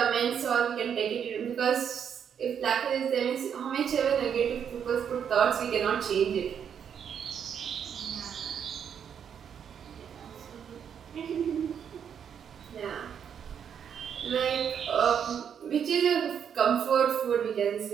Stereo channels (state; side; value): quieter; left; 8.0 dB